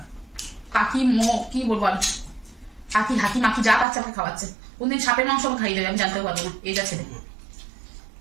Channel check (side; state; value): left; drops out; at 3.9 s